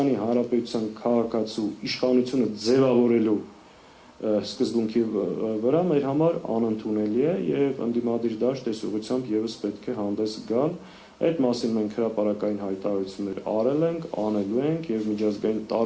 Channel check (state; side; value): identical; both; correlation 1.00